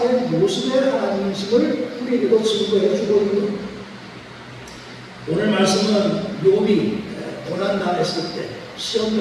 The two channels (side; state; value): both; identical; correlation 1.00